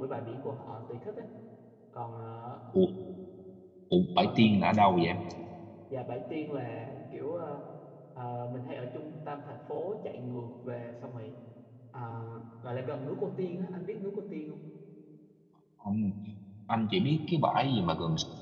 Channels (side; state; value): both; identical; correlation 1.00